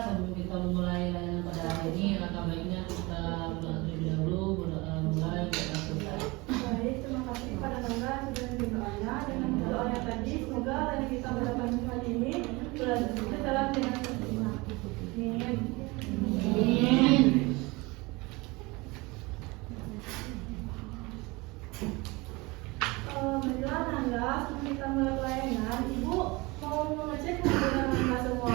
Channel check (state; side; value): quieter; left; 24.1 dB